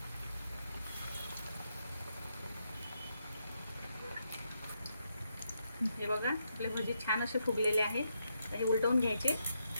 हे बघा आपले भजी छान असे फुगलेले आहेत. हे उलटवून घ्यायचे.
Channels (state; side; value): inverted; both; correlation -0.80